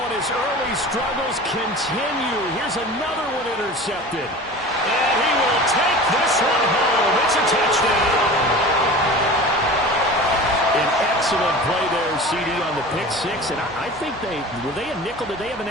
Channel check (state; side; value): normal; both; correlation 0.36